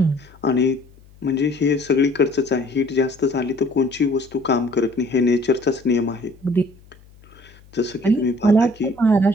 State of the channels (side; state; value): left; noise; hum, 26 dB below the sound